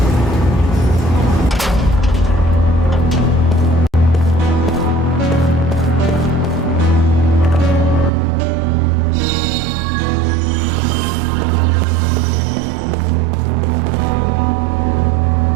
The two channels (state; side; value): drops out; left; at 8.1 s